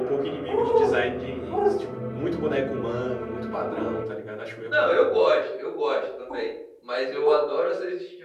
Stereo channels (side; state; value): both; identical; correlation 1.00